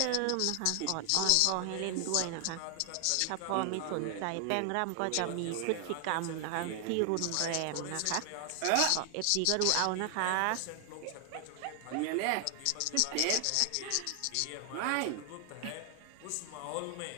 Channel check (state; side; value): different; both; correlation 0.00